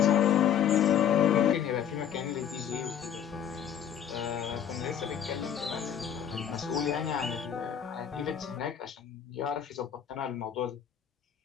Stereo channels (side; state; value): right; quieter; 9.0 dB